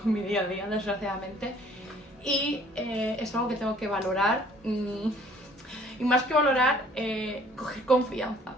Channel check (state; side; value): normal; both; correlation 0.56